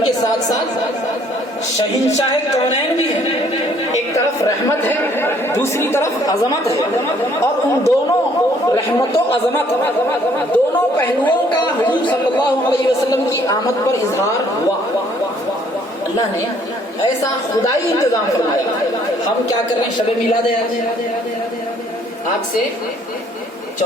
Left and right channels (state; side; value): normal; both; correlation 0.62